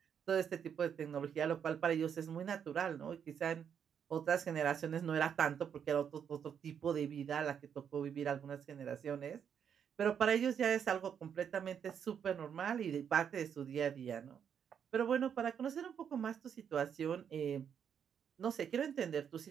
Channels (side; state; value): left; quieter; 8.0 dB